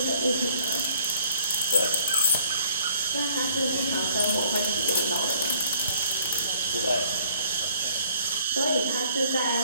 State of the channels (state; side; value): inverted; both; correlation -0.59